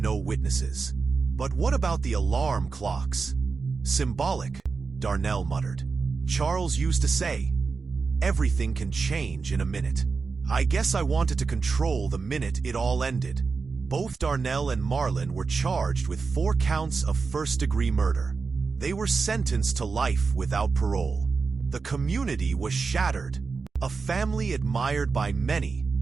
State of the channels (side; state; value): left; quieter; 4.7 dB